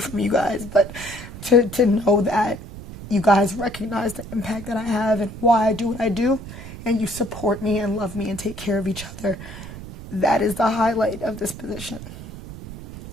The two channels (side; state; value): right; noise; rumble, 12 dB below the sound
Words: you guys, but to know that you guys recognize the impact that I have and why I do what I do, and you support me and love me and take care of each other, that is the highlight of this position.